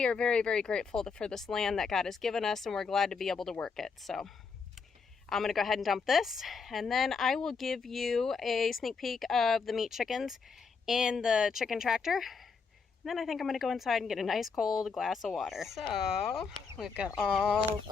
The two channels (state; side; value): quieter; right; 5.2 dB